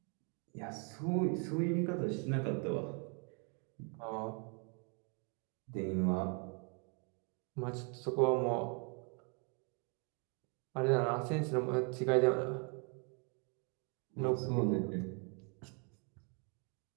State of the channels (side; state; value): left; quieter; 36.0 dB